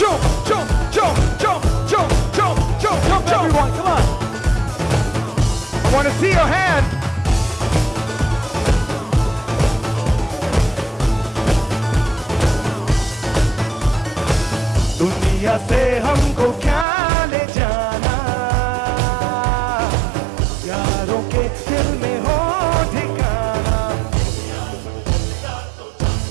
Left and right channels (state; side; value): drops out; left; at 16.9 s